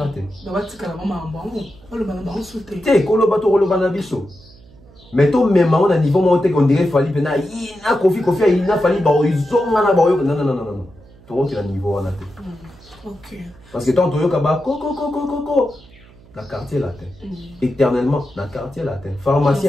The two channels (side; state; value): right; noise; hum, 25 dB below the sound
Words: mais tout même on a niveau monté qu'on dirait Fali pena il a Kofi il a Fali ils ont non tout le niveau on a OK parce que tant toyo kaba coco dans le quartier latin. Éternellement, dans le quartier latin.